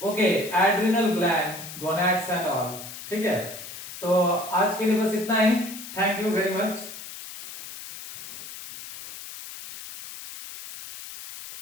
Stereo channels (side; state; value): left; noise; hiss, 12 dB below the sound